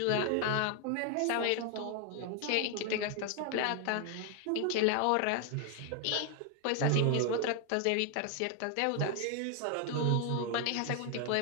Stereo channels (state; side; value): different; both; correlation 0.00